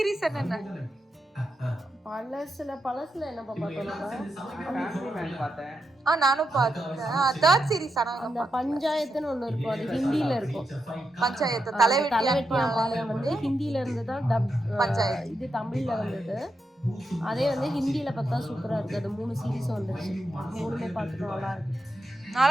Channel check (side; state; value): both; normal; correlation 0.86